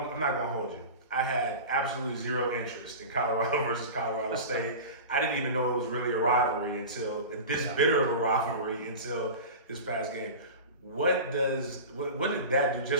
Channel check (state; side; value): inverted; both; correlation -0.31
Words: hold you. I had absolutely zero interest in Colorado versus Colorado State. I didn't even know it was really a rivalry until this bitter of a rivalry until this past game. What did that do